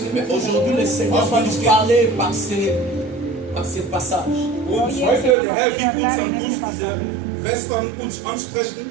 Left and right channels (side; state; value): left; drops out; at 5.4 s